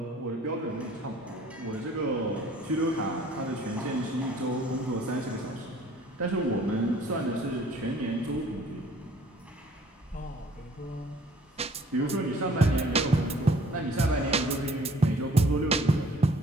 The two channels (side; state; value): both; normal; correlation 0.55